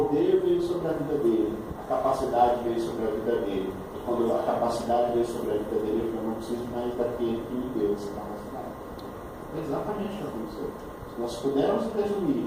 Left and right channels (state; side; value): identical; both; correlation 1.00